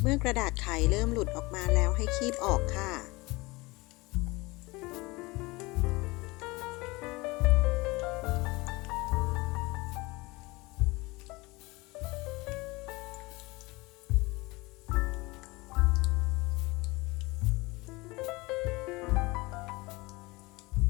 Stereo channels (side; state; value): right; quieter; 23.2 dB